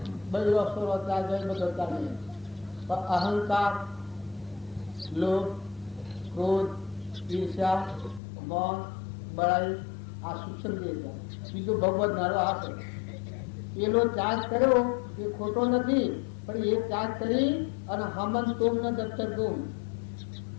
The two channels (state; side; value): drops out; right; at 8.2 s